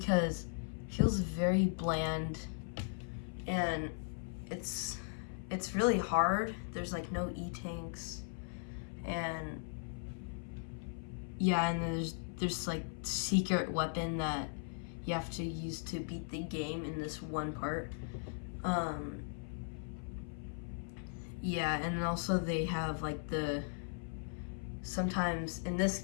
it feels very bland, and it's really hard. There's like no E-tanks, and yeah, and there's like secret weapon that you have to use to beat the game in this one part. Yeah, and also they have like sometimes in this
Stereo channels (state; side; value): silent; right; 52 dB below the other